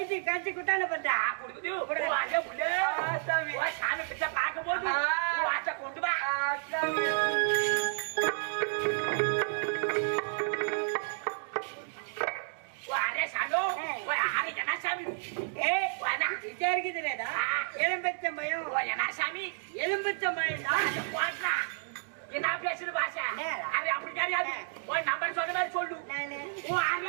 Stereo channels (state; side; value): silent; left; digital silence